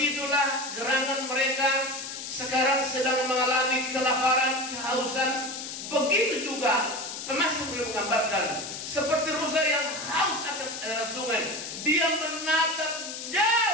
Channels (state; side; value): noise; left; hiss, 8 dB below the sound